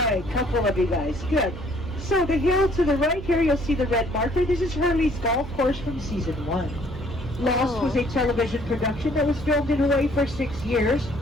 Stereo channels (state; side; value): noise; right; hum, 12 dB below the sound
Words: couple of you guys. Good. So the hill to the right here, you'll see the red marker. This is Hurley's golf course from season 1. Lost was a television production that was filmed in Hawaii for 6 years,